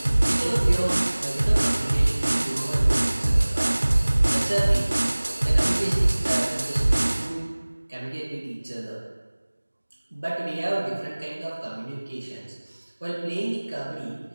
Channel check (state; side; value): inverted; both; correlation -1.00